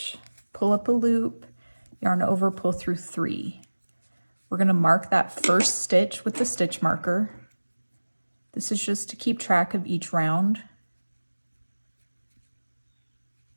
pull up a loop, yarn over, pull through 3. We're going to mark that first stitch with the stitch marker. This is just to keep track of each round.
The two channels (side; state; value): both; inverted; correlation -1.00